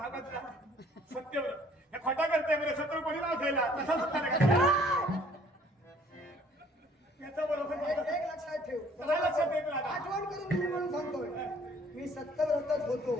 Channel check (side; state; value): both; normal; correlation 0.58